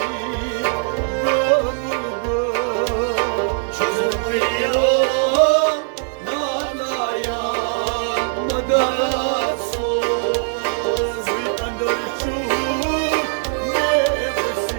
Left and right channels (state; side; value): silent; left; 57 dB below the other